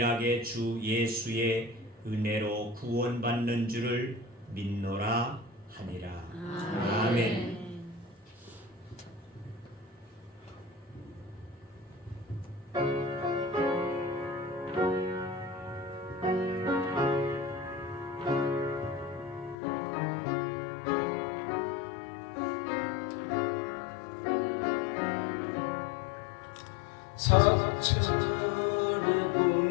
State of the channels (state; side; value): drops out; right; at 19.6 s